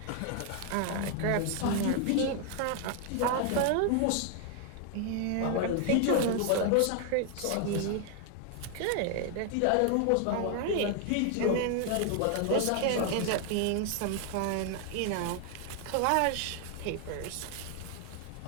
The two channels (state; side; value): different; both; correlation 0.00